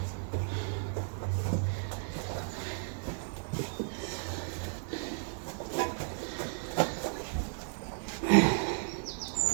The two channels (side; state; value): left; silent; 55 dB below the other